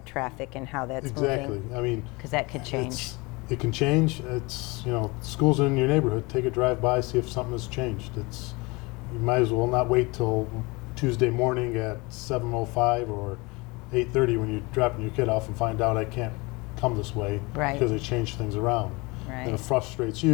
traffic and how that's Exactly. moving. I mean, Because that could change. It can change. It's schools in your neighborhood. Take a drive by, see if something has changed. You might as well not wait till Tuesday morning at 7:05 or 8:30 when you're dropping your kid off and find out I can't come this way because they changed things around. Right. And it frustrates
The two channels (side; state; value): right; quieter; 25.4 dB